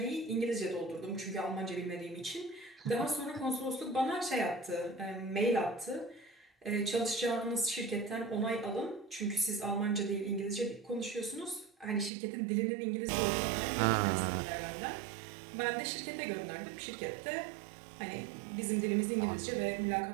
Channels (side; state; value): left; drops out; at 12.1 s